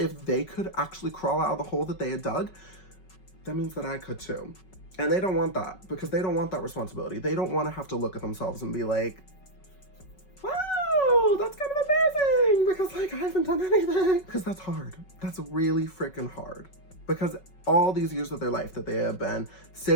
they could actually crawl out of the hole that they had dug, that means that I could too. And they don't want that, because they don't want that responsibility. They don't want to have to look at themselves and be like, wow, that's kind of embarrassing because like I haven't done anything. Because that's hard. That's really freaking hard. Because all these years of their life that they have been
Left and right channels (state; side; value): late; right; 5.3 ms